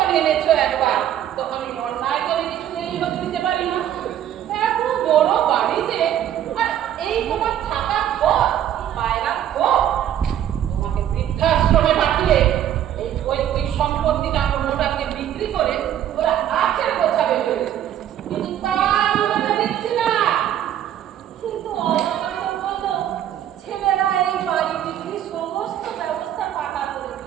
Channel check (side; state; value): left; quieter; 10.9 dB